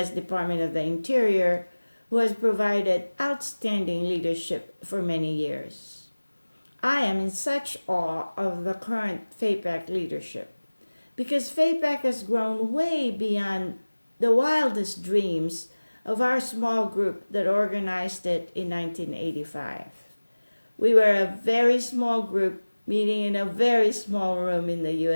Department of the Interior, who has provided outstanding leadership for many years. I am in such awe of the current FAPAC leadership because FAPAC has grown way beyond the wildest dreams of our small group that organized it in 1985. We were a very small group meeting in a very small room in the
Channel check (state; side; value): inverted; both; correlation -1.00